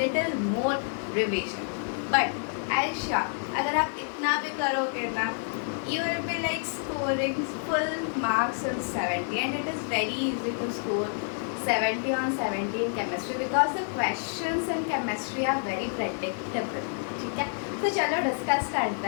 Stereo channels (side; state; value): right; silent; 58 dB below the other